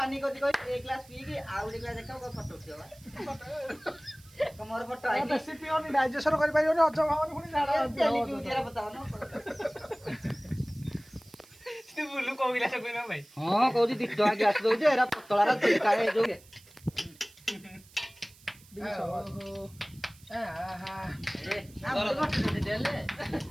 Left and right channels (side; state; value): right; noise; hiss, 24 dB below the sound